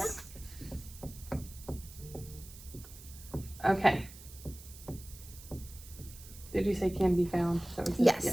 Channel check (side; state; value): right; noise; hiss, 17 dB below the sound